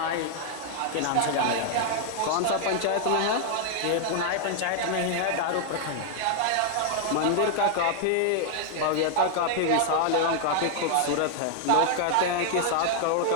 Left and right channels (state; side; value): different; both; correlation 0.00